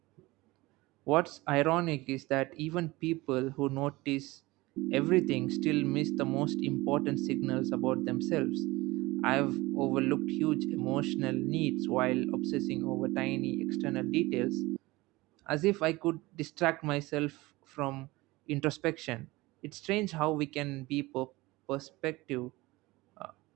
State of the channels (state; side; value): quieter; left; 20.8 dB